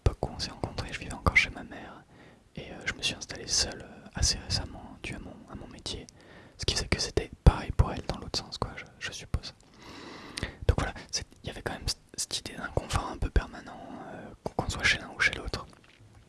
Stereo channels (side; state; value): both; identical; correlation 1.00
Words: où on s'est rencontrés, je vivais encore chez ma mère. Et je me suis installé seul assez récemment, dû à mon métier. Ce qui faisait que c'était pareil pour elle dans l'autre sens, quoi, je suppose. Donc voilà, il y avait quand même cette idée d'inconfort un peu permanent, qu'on soit chez l'un ou chez l'autre.